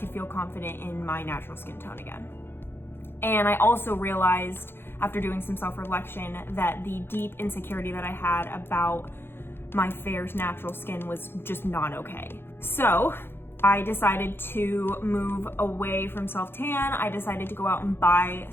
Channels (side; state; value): right; late; 0.11 ms